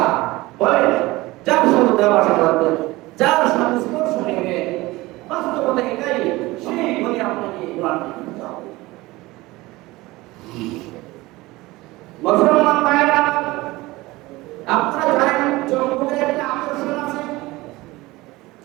বলে যার সাথে ভাষা করবে যার সাথে স্পর্শ নেবে বাস্তবতা এটাই সেই বলে আপনাকে মুসলমান ভাইরা আপনারা জানেন জঙ্গলের একটা আকর্ষণ আছে।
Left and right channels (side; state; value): left; quieter; 20.2 dB